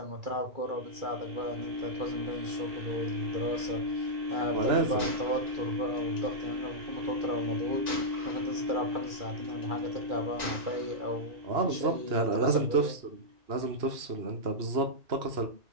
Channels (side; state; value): left; late; 2.4 ms